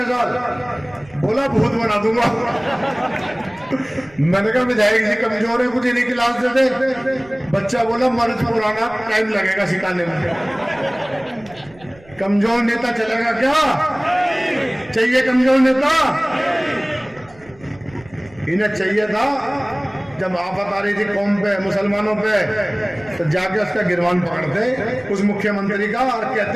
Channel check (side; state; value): right; noise; rumble, 25 dB below the sound